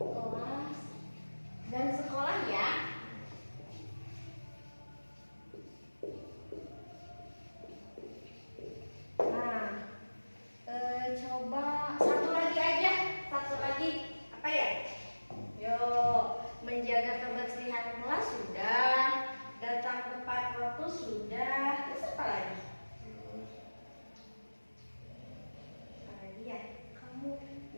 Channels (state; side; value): inverted; both; correlation -1.00